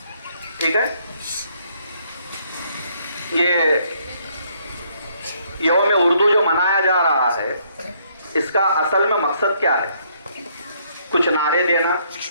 ठीक है, ये यौम उर्दू जो मनाया जा रहा है, इसका असल में मकसद क्या है? कुछ नारे देना,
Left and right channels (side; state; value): both; inverted; correlation -0.68